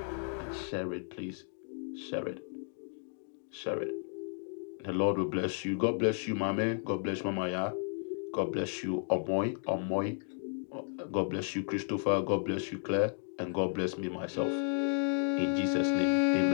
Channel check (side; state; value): right; silent; 56 dB below the other